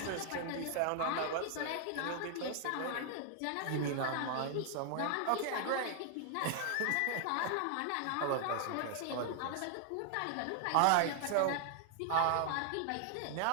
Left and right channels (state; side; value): different; both; correlation 0.00